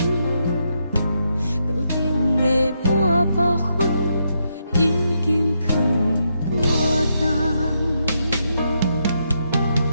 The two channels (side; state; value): both; inverted; correlation -0.80